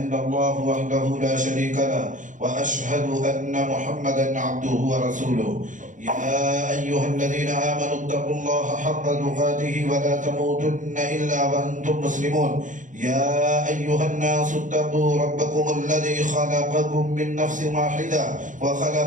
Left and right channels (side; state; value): left; late; 0.37 ms